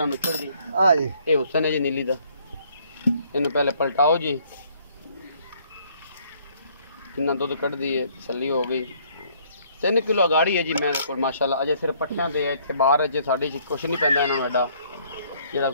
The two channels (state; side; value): inverted; both; correlation -0.64